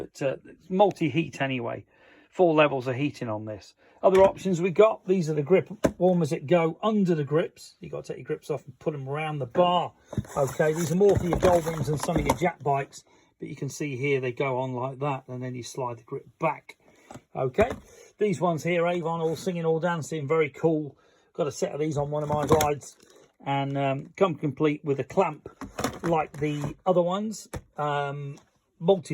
it's multi-heat anyway. 4 levels of heating on this. Other options we got, these are the grip warmers that go under the grips. You've got to take your grips off and put them around the bar. Okay, these are more for your Goldwings and some of your Jack bikes. But you can see here they go on like that and then you slide the grip back. Okay, these ones here, Avon, all singing, all dancing, very cool. Got a set of these on one of my rides. And come complete with a clamp like the other ones.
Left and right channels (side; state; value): both; identical; correlation 1.00